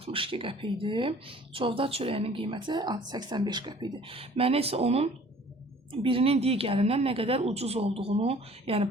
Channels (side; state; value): both; normal; correlation 0.51